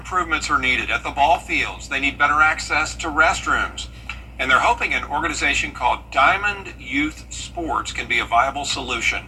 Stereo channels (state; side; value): identical; both; correlation 1.00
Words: are needed at the ball fields. They need better access to restrooms, and they're hoping an organization called Diamond Youth Sports can be a viable solution.